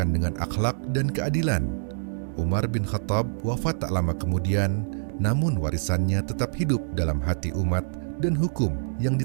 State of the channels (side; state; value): left; silent; digital silence